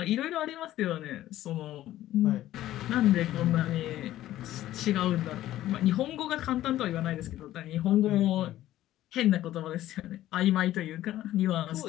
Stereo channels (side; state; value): right; quieter; 14.0 dB